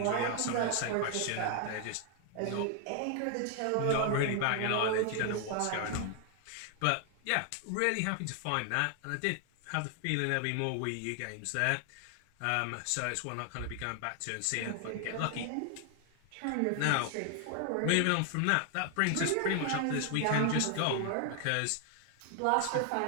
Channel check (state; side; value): different; both; correlation 0.00